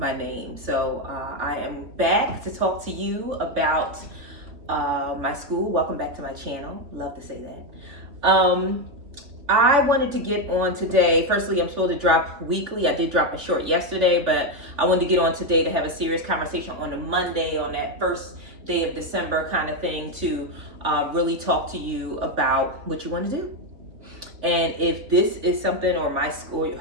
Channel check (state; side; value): late; left; 3.2 ms